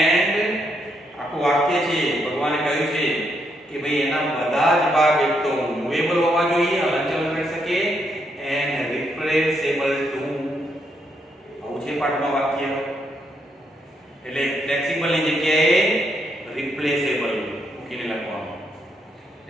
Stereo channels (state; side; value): normal; both; correlation 0.77